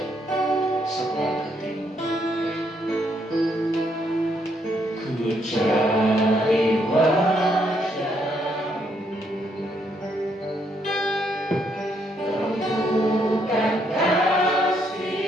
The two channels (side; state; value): both; normal; correlation 0.73